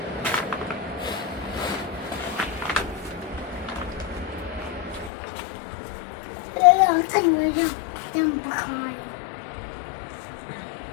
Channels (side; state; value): right; drops out; at 5.1 s